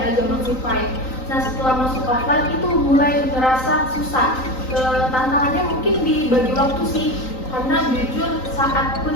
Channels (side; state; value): right; late; 3.9 ms